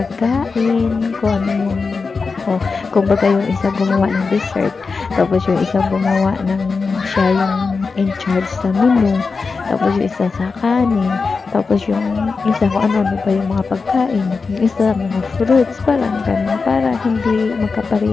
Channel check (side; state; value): right; quieter; 4.6 dB